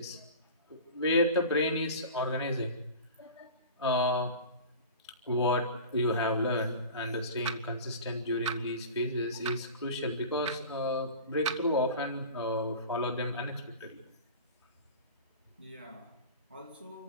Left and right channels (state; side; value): inverted; both; correlation -0.36